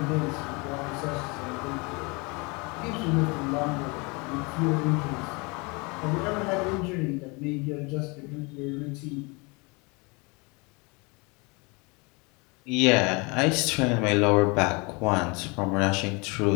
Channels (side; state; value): right; quieter; 28.6 dB